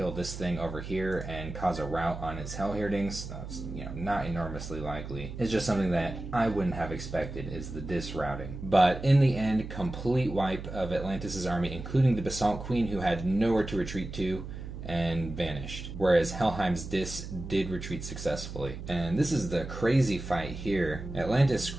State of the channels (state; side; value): noise; right; hum, 9 dB below the sound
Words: this thing over here and cause a rout on its Hellherdings, that's, you know, not enormously likely. It's just something that I wouldn't have expected, is the Dis routing. But in the end, complete wipe of Atlantis' army, including the Basalt Queen, who had nowhere to retreat to and vanished, whereas Helheim's Dis did retreat successfully. And this is the crazy fight here. Atlantis